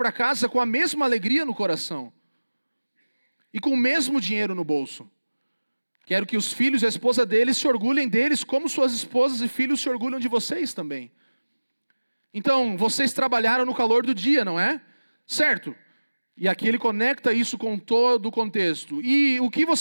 casa com a mesma alegria no coração e com o mesmo dinheiro no bolso. Quero que os filhos e a esposa deles se orgulhem deles, como suas esposas e filhos se orgulham de vocês também. Então, vocês trabalharam no calor do dia, não é? Certo. E aqui ele conecta isso com todo o contexto. E o que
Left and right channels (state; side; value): inverted; both; correlation -1.00